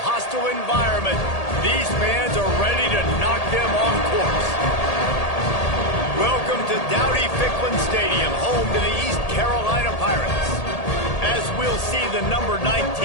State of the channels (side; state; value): right; late; 1.8 ms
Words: hostile environment, these fans are ready to knock them off course. Welcome to Dowdy-Ficklin Stadium, home to the East Carolina Pirates. As we'll see the number 19